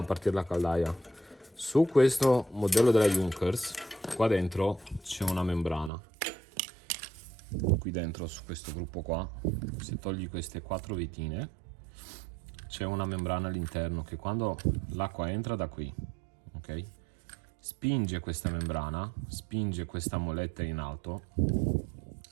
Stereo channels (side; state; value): left; drops out; at 5.9 s